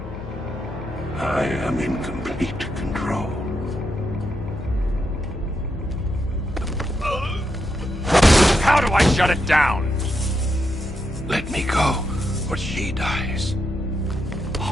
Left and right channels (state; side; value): noise; left; hum, 11 dB below the sound